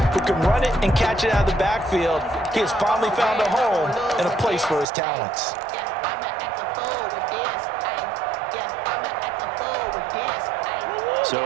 who can run it and catch it out of the backfield. He has finally found a home and a place for his talents.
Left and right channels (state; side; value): drops out; left; at 4.9 s